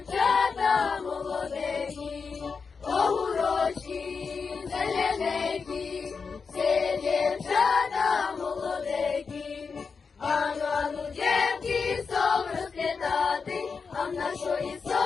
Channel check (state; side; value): quieter; right; 5.2 dB